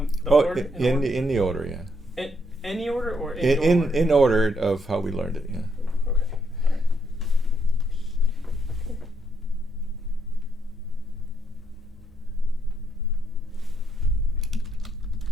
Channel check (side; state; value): both; normal; correlation 0.75